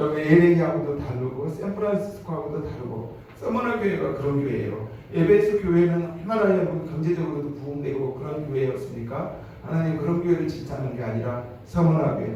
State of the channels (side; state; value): both; identical; correlation 1.00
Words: LA하고도 다르고 샌프란시스코하고도 다르고 서머나 교회가 그런 교회예요. 에베소 교회는 얼마나 여러분 경제적으로도 부흥되고 그런 교회였습니까? 하나님 그런 교회를 칭찬하는 게 아니라 서머나